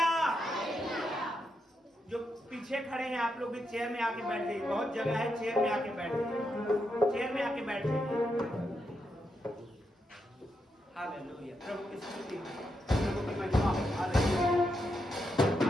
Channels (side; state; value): both; normal; correlation 0.83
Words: जो पीछे खड़े हैं आप लोग भी चेयर में आके बैठ जाइए, बहुत जगह है, चेयर में आके बैठ जाइए, चेयर में आके बैठ जाइए। हालेलुया। प्रभु की स्तुति, प्रभु की महिमा। Hallelujah,